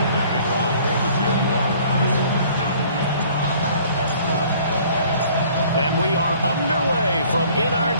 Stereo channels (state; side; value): inverted; both; correlation -0.55